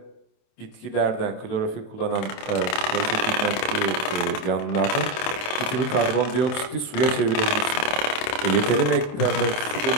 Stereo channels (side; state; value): right; late; 27 ms